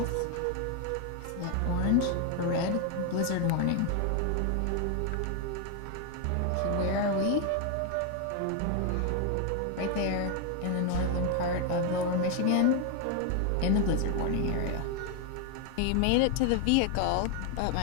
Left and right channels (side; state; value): both; different; correlation 0.01